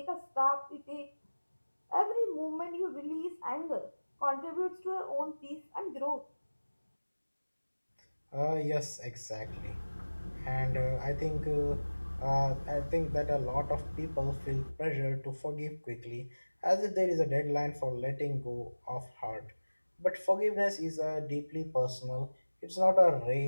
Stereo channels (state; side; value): inverted; both; correlation -1.00